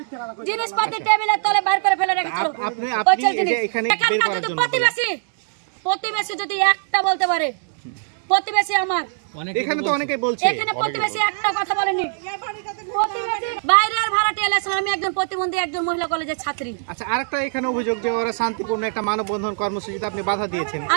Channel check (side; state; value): left; silent; digital silence